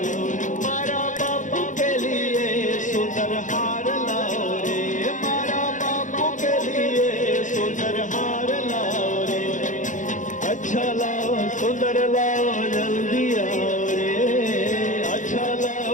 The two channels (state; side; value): late; right; 0.37 ms